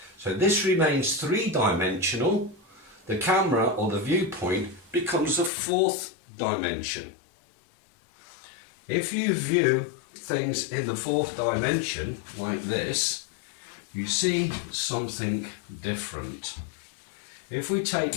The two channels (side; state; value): right; drops out; at 5.5 s